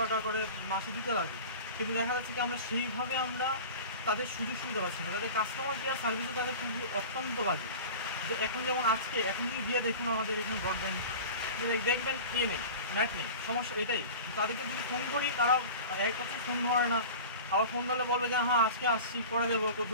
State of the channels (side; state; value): both; inverted; correlation -0.35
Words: টাকা করে মাসে দিতে লাগে, কিন্তু দেখা যাচ্ছে কি আমরা সেইভাবে আমরা তাদের সুযোগ সুবিধা পাচ্ছি না। তাদের কাস্টমার কেয়ার সার্ভিসও তাদের খুবই অত্যন্ত বাজে। যে এখন যেমন আজকে এখন যদি দিয়ে দেখুন আমাদের এখানে ব্রডব্যান্ড দেখবেন নেই, নেট নেই, সমস্যা এটাই। তাদেরকে যদি ফোন করি তারা এক কথা ফোন ধরে না, আবার ফোন ধরলে বলবে যে হ্যাঁ আজকে আসছি করে দেবো